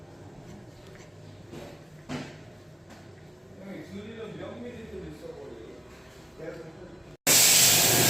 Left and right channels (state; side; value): normal; both; correlation 0.97